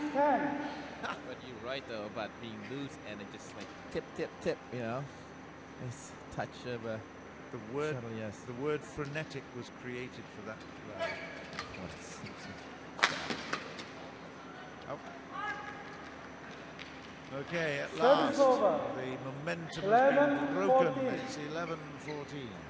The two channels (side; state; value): both; identical; correlation 1.00